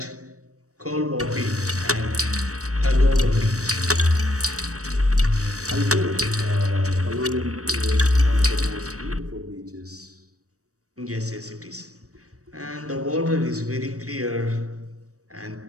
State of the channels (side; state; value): left; late; 0.66 ms